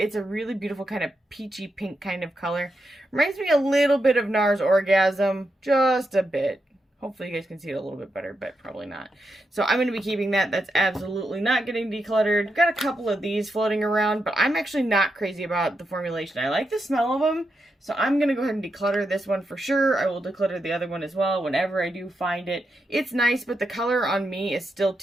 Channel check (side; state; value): both; normal; correlation 0.85